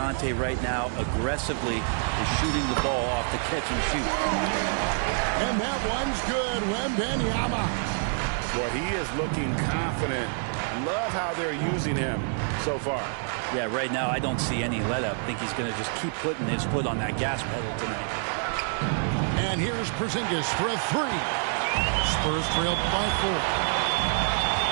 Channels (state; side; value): silent; left; 57 dB below the other